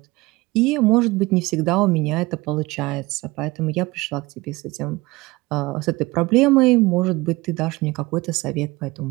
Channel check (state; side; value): quieter; left; 21.8 dB